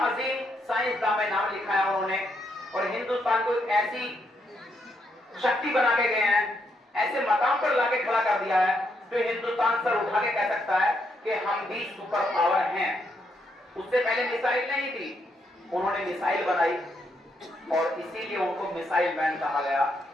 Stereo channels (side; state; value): both; normal; correlation 0.77